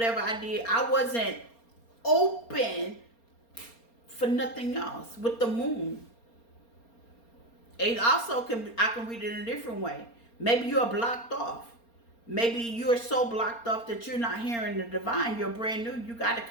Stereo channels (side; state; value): right; late; 4.3 ms